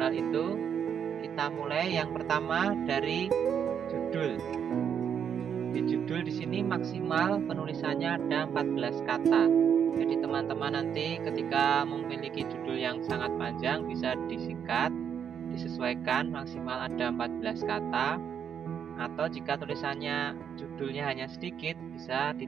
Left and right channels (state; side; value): quieter; left; 8.0 dB